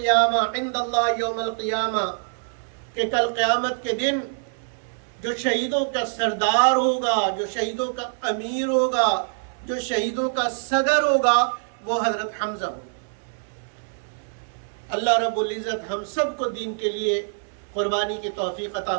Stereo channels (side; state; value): left; silent; 62 dB below the other